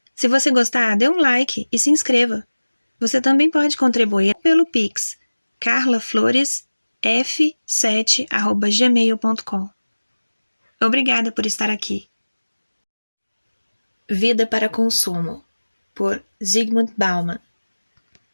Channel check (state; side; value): inverted; both; correlation -1.00